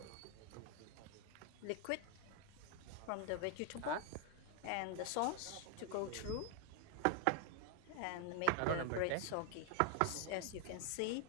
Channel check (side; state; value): both; different; correlation 0.00